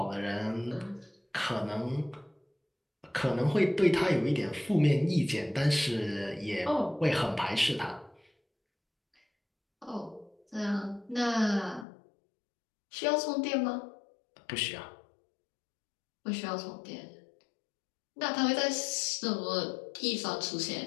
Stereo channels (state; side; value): drops out; right; at 11.9 s